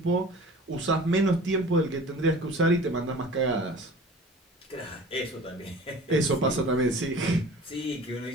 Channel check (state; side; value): normal; both; correlation 0.42